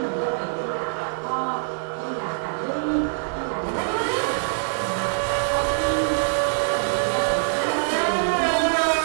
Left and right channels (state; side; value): silent; left; 63 dB below the other